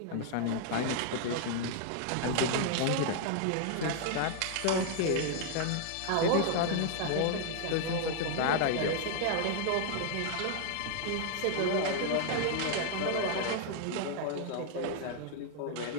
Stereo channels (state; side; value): different; both; correlation 0.00